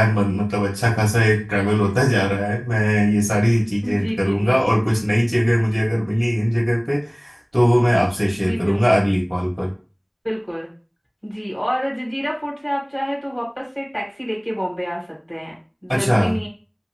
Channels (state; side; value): identical; both; correlation 1.00